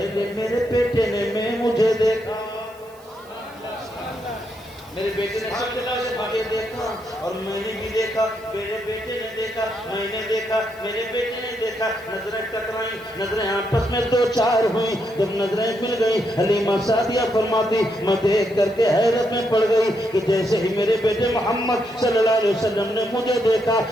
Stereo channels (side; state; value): right; noise; hiss, 27 dB below the sound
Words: میرے بیٹے نے مجھے دیکھا، میرے بیٹے نے سب سے مجھے دیکھا، اور میں نے بھی دیکھا، میرے بیٹے نے دیکھا، میں نے دیکھا، میرے بیٹے نے دیکھا، نظریں ٹکرائیں، نظریں آپس میں دو چار ہوئیں، جب نظریں مل گئی حلیمہ سعدیہ فرماتی میں دیکھ کر کے حیرت میں پڑ گئی کہ جیسے ہی میرے بیٹے محمد صلی اللہ علیہ وسلم نے مجھے دیکھا